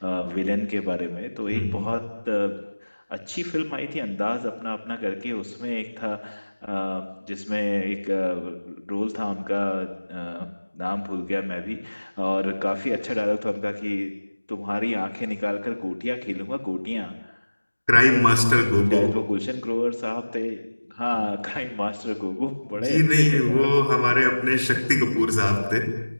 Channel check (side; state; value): both; inverted; correlation -1.00